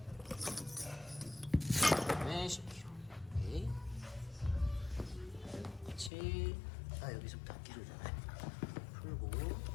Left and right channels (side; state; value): right; drops out; at 6.1 s